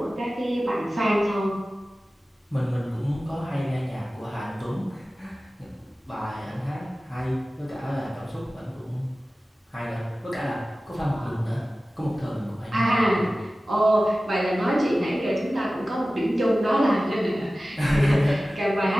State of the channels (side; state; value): both; normal; correlation 0.96